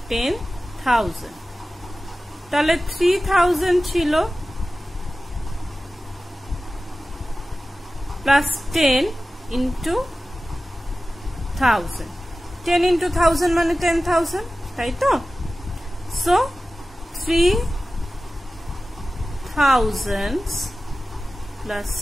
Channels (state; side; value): normal; both; correlation 0.96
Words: তাহলে 3,000 ছিল plus 10 into 1000. 10 into 1000 মানে 10,000, তাই তো? So 3,000 plus